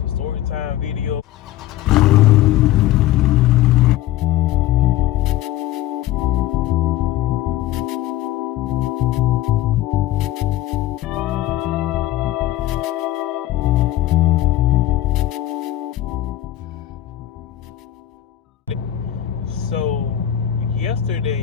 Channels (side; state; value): right; quieter; 13.8 dB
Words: story time video. So